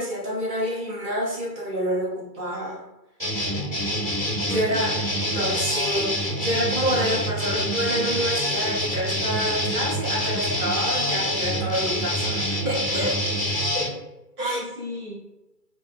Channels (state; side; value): late; left; 2.3 ms